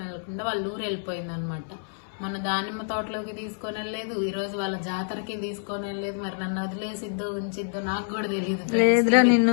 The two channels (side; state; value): right; silent; 60 dB below the other